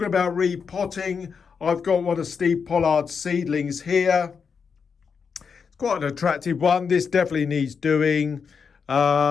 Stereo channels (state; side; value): quieter; right; 6.0 dB